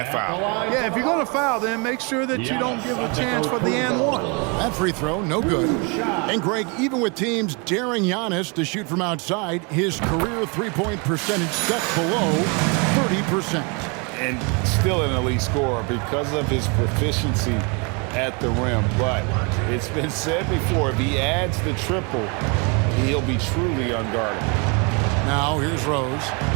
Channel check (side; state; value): left; quieter; 32.0 dB